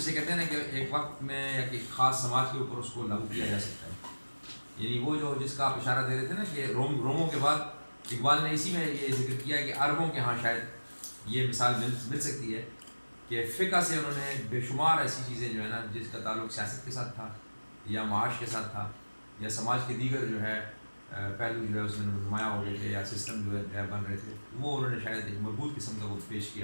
کہتے ہیں نا کہ ایک وقت میں یا ایک خاص سماج کے اوپر اس کو لاگو کیا جا سکتا ہے. یعنی وہ جو جس کا آپ اشارہ دے رہے تھے نا کہ روموں کے بعد اقبال نے اسی میں یہ ذکر کیا کہ عربوں کے ہاں شاید یہ مثال مل سکتی ہے کہ فقہ سے انہوں نے بے شمار ایسی چیزیں جو ہے نا جس کا تعلق سیاست کے ساتھ تھا یا معاش کے ساتھ تھا یا سماج کے دیگر جو ہے پہلو جو ہے اس میں نمایاں ہو رہے تھے یا سسٹم جو ہے بن رہے تھے، وہ انہوں نے شاید ایک مربوط قسم کا وہ پیش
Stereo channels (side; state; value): both; inverted; correlation -1.00